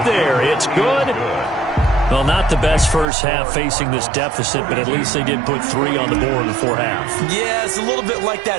there. It's good. Well, not the best first half facing this deficit, but at least they did put 3 on the board before half. Yeah, it's a little bit like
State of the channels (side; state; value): left; drops out; at 3.1 s